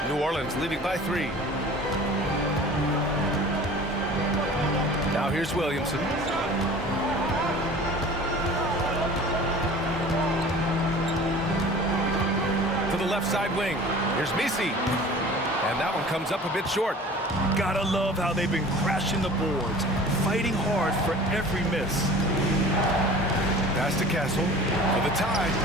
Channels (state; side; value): normal; both; correlation 0.43